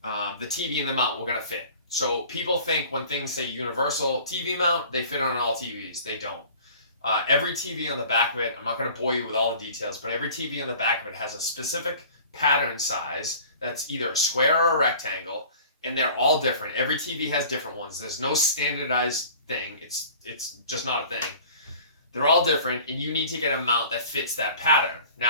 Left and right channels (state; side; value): inverted; both; correlation -0.45